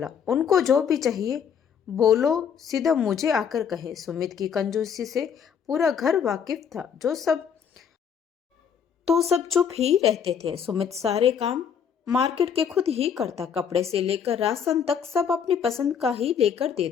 उनको जो भी चाहिए बोलो, सीधा मुझे आकर कहे। सुमित की कंजूसी से पूरा घर वाकिफ था, सब चुप ही रहते थे। सुमित सारे काम मार्केट के खुद ही करता, कपड़े से लेकर राशन तक सब अपनी पसंद का ही लेकर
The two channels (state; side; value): quieter; right; 7.5 dB